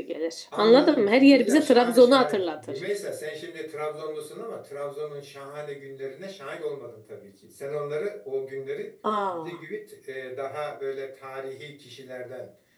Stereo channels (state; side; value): identical; both; correlation 1.00